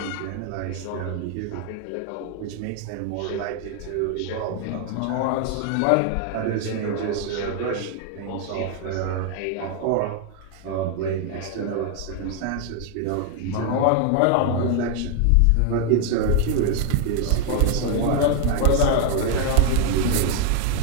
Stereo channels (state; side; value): different; both; correlation 0.00